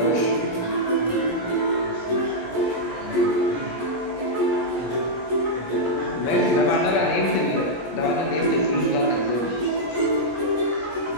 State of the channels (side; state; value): right; late; 17 ms